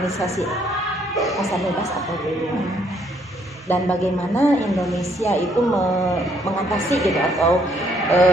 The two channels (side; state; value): both; normal; correlation 0.68